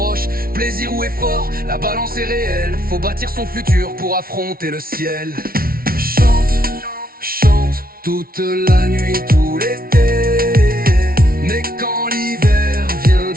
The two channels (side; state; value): left; late; 0.43 ms